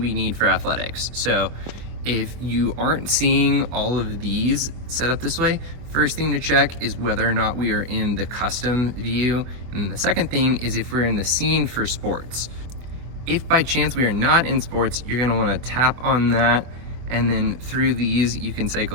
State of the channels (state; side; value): late; left; 25 ms